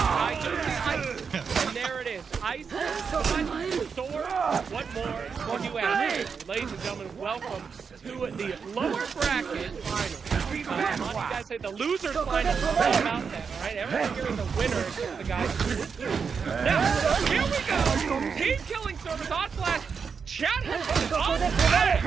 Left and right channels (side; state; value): left; quieter; 5.9 dB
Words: do see ice. And there it is. Ice, sword, what more can you ask? Ladies and gentlemen, welcome to the lower bracket final. You guys say the losers final is all about that, all right? Everyone here is a winner except the guys who lose. Now, here we go. Team Killing Service on Flash. Chat has been on